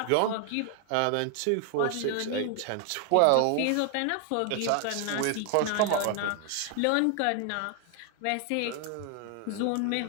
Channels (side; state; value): both; different; correlation 0.00